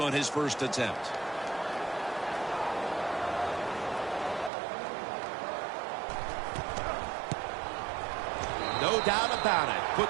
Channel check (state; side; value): drops out; left; at 4.5 s